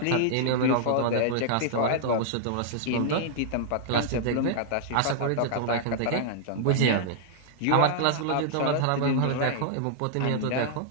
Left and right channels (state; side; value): different; both; correlation -0.01